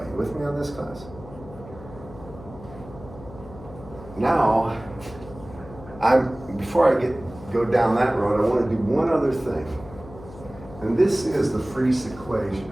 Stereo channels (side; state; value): left; noise; hum, 17 dB below the sound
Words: You with me on this, class? Now, before I go down that road, I want to do one other thing. And this is the Friese equation.